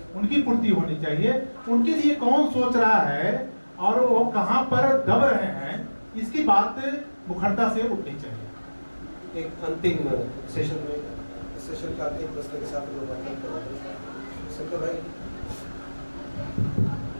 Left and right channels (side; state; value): both; inverted; correlation -1.00